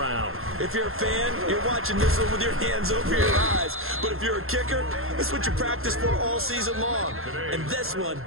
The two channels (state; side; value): late; left; 0.61 ms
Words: If you're a fan, you're watching this one with your hands over your eyes. But if you're a kicker, this is what you practice for all season long. And this one